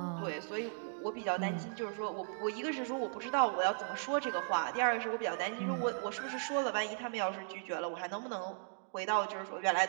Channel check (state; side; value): silent; left; digital silence